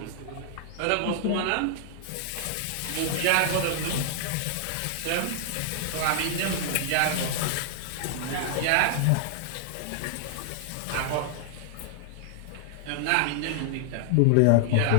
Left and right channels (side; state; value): both; different; correlation -0.01